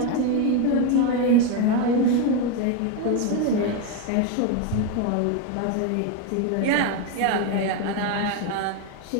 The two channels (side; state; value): both; different; correlation 0.02